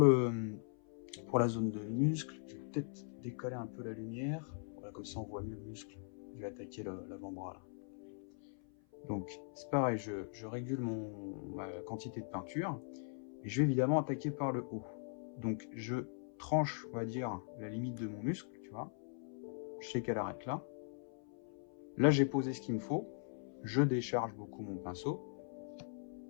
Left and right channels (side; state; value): right; silent; 51 dB below the other